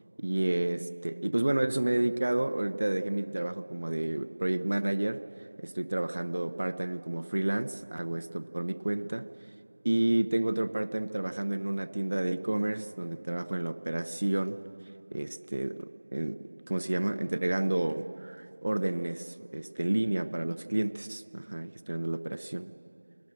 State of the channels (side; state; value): both; inverted; correlation -1.00